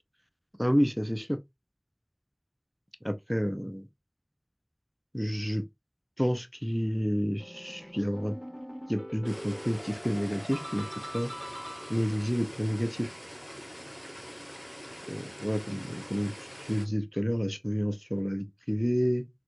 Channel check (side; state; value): both; identical; correlation 1.00